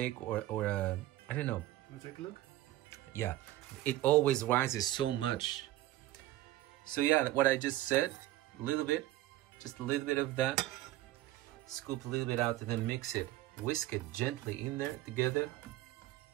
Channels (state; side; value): quieter; left; 15.2 dB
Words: or a, I don't know. Wanna take a look? Yeah, it always rises so much. So yeah, what I just said, a little bit, just a little bit of that. Scoop a little bit out and then mix it. Whisk it gently in there together